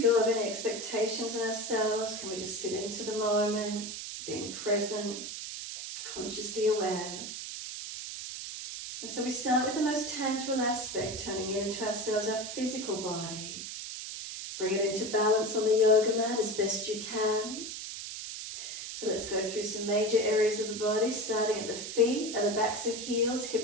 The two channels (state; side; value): noise; right; hiss, 7 dB below the sound